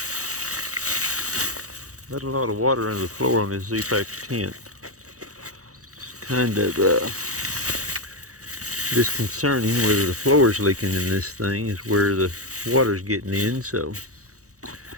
let a lot of water under the floor on this Z-Pack tent. It's kind of disconcerting. Whether the floor's leaking in this thing is where the water's getting in. So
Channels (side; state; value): left; late; 0.66 ms